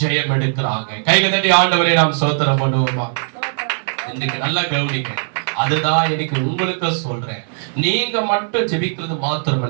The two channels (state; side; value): silent; left; digital silence